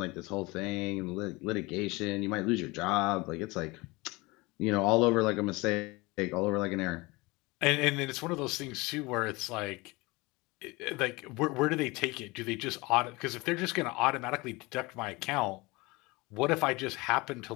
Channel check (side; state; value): right; quieter; 23.7 dB